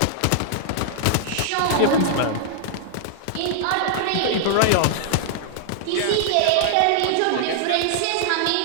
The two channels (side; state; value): both; different; correlation -0.01